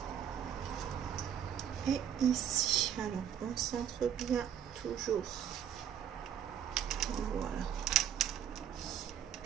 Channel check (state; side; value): quieter; left; 9.5 dB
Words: Et ici. Alors, on centre bien toujours. Voilà.